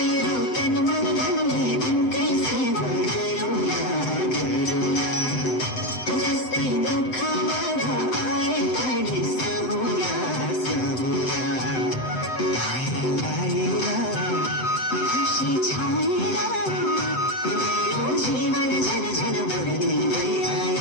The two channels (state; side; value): late; right; 7.8 ms